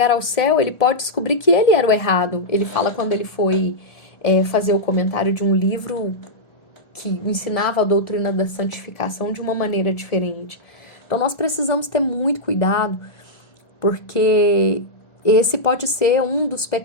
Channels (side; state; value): right; late; 1.4 ms